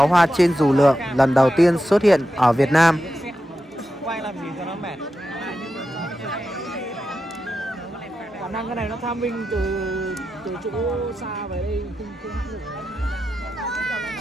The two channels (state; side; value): normal; both; correlation 0.89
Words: hoa trên dù lượn lần đầu tiên xuất hiện ở Việt Nam. Quay làm gì cho nó mệt. Khả năng cái này nó tham minh từ chỗ xa về đây không hãng được.